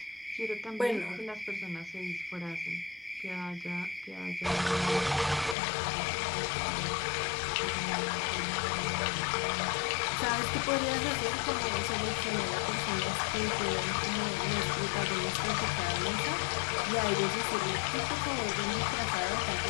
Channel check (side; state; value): right; drops out; at 5.6 s